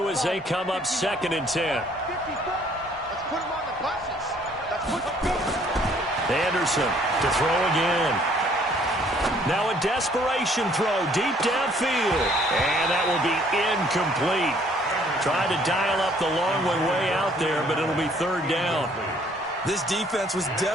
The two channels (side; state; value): both; normal; correlation 0.61